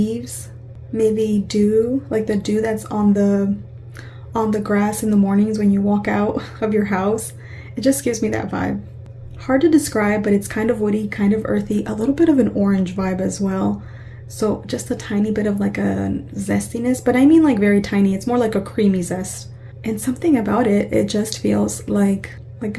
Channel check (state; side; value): identical; both; correlation 1.00